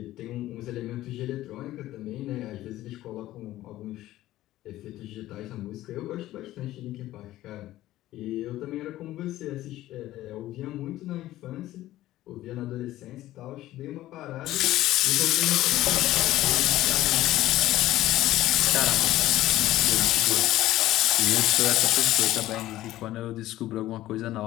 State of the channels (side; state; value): right; quieter; 15.1 dB